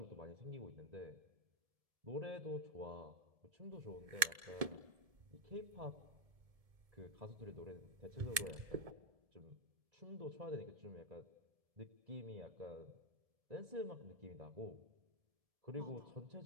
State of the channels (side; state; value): left; late; 1.7 ms